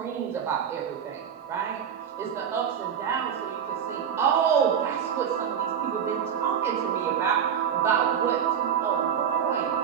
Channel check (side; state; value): left; quieter; 8.1 dB